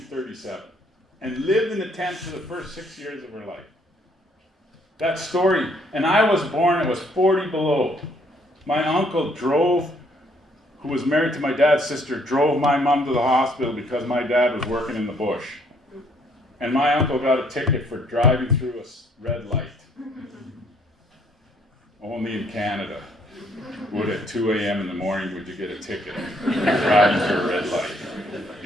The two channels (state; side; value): normal; both; correlation 0.66